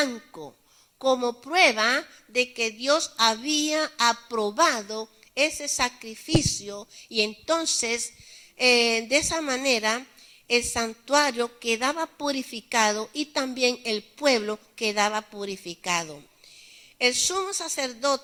como prueba de que Dios había aprobado ese sacrificio, y entonces de esa manera el santuario quedaba purificado y también el pueblo quedaba purificado. El sumo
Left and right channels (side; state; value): both; identical; correlation 1.00